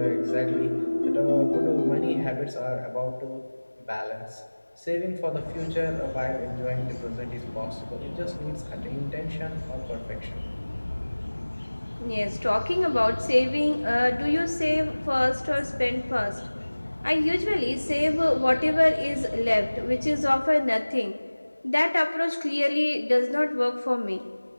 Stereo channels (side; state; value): both; inverted; correlation -1.00